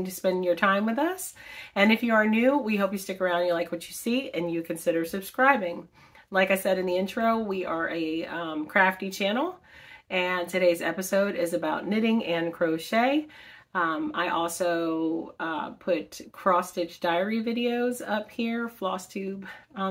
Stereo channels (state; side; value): identical; both; correlation 1.00